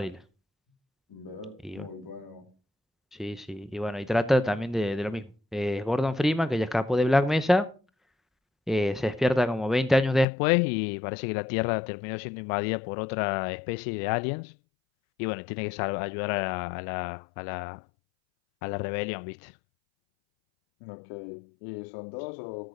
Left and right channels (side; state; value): right; drops out; at 10.2 s